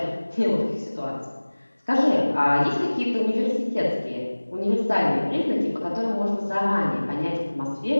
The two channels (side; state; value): both; inverted; correlation -1.00